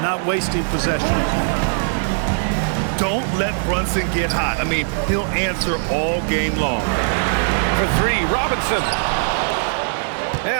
not wasting possession. Don't let Brunson get hot. I mean, he'll answer all game long. For three, Robinson.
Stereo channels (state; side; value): silent; left; digital silence